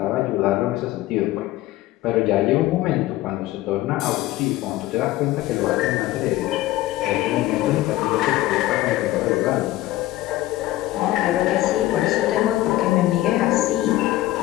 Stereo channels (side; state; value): right; quieter; 16.3 dB